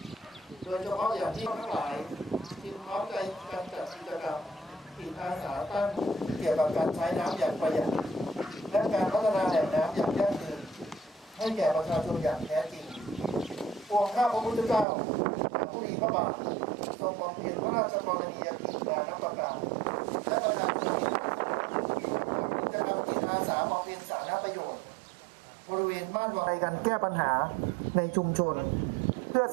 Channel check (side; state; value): left; drops out; at 14.9 s